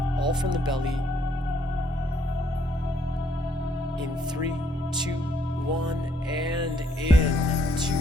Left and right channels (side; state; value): both; normal; correlation 0.69